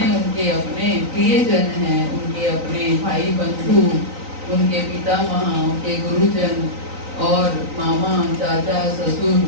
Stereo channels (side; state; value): left; late; 3.9 ms